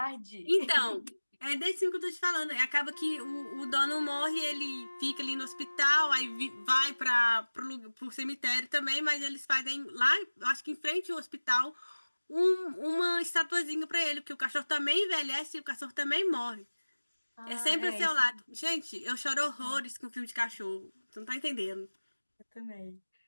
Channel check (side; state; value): both; inverted; correlation -1.00